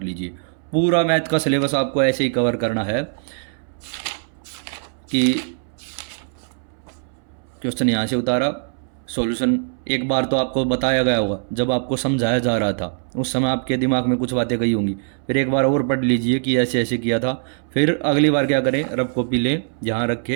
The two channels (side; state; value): left; silent; 64 dB below the other